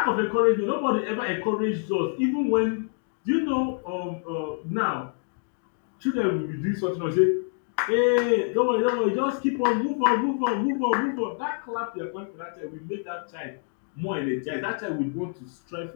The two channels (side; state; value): right; silent; 61 dB below the other